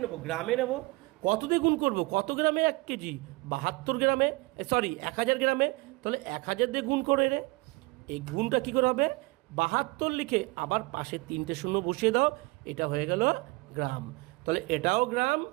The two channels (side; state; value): left; quieter; 23.5 dB